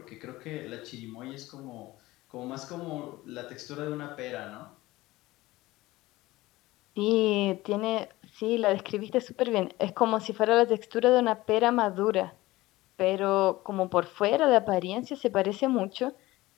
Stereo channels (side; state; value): right; quieter; 18.6 dB